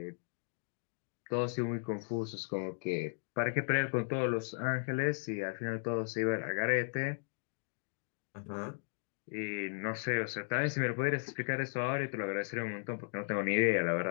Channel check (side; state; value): right; silent; digital silence